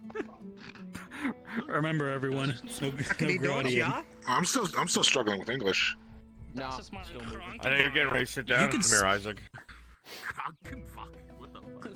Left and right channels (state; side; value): identical; both; correlation 1.00